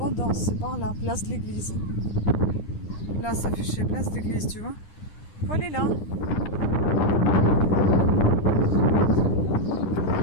c'est par là, place de l'église. Là, ça affichait place d'église, tu vois. Faut aller là.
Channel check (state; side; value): late; right; 9.9 ms